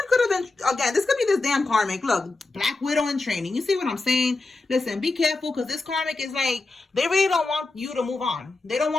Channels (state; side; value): quieter; right; 3.4 dB